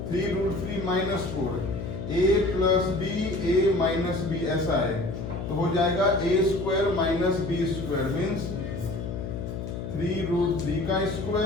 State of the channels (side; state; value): left; noise; hum, 6 dB below the sound